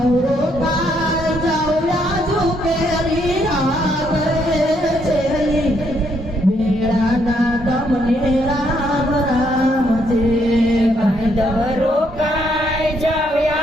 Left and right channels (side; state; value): both; normal; correlation 0.73